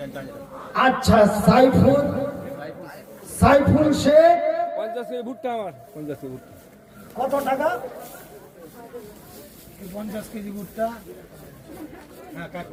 আচ্ছা, সাইফুল শেখ 50 ভুট্টা আমার 50 ভুট্টা কত টাকা? 50 কেজি ভুট্টা। হ্যাঁ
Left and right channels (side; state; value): both; identical; correlation 1.00